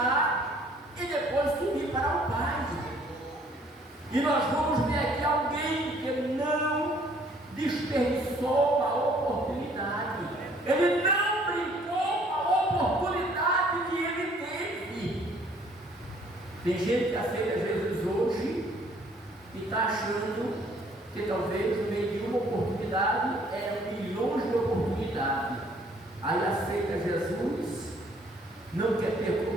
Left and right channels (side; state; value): both; normal; correlation 0.60